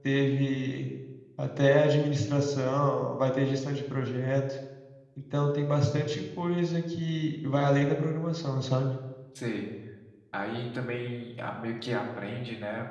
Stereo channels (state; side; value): identical; both; correlation 1.00